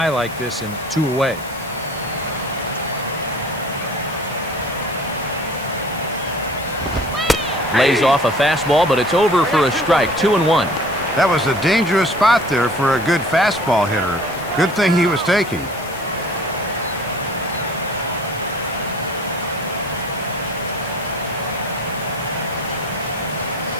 like this in 2 away. Lays off a fastball, but it's over for a strike. 2-1. That was a dangerous spot there for a good fastball hitter. Good thing he was taking.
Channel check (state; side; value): noise; left; hiss, 18 dB below the sound